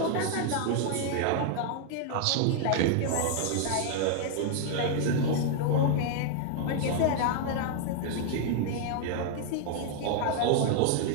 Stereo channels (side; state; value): both; different; correlation 0.00